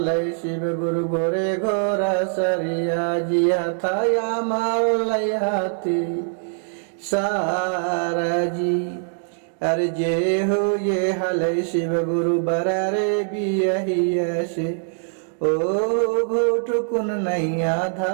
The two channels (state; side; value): silent; left; digital silence